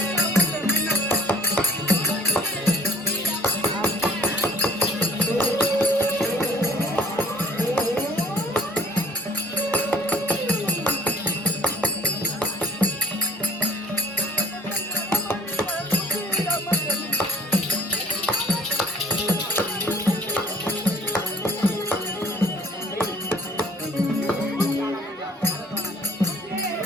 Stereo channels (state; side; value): normal; both; correlation 0.53